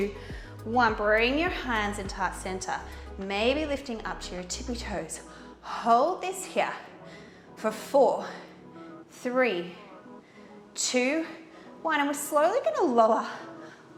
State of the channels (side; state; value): both; identical; correlation 1.00